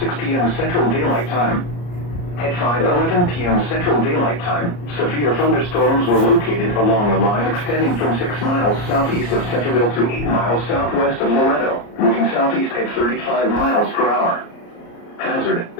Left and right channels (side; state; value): right; late; 34 ms